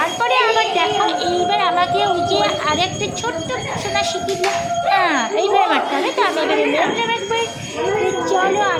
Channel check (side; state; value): both; identical; correlation 1.00